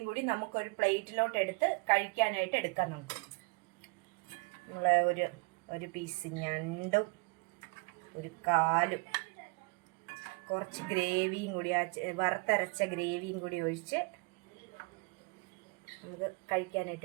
കൂടി നമുക്കൊരു പ്ലേറ്റിലോട്ട് എടുത്ത് കഴിക്കാനായിട്ട് എടുക്കാം. നമുക്ക് നമ്മളെ ഒരു പീസ് ഞണ്ടും ഒരു കാലും കുറച്ച് ഗ്രേവിയും കൂടി, വറുത്തരച്ച ഗ്രേവിയും കൂടി ഒഴിച്ച് നമുക്ക്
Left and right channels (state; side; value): quieter; left; 30.0 dB